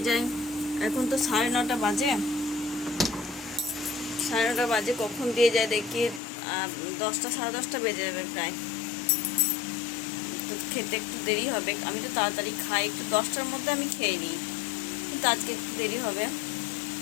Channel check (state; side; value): drops out; right; at 6.2 s